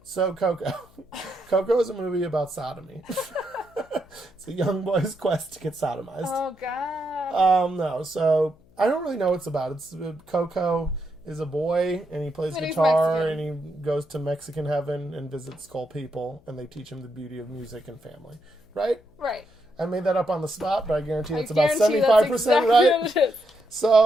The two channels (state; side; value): noise; left; hum, 29 dB below the sound